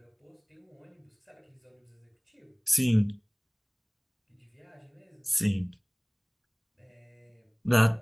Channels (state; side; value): identical; both; correlation 1.00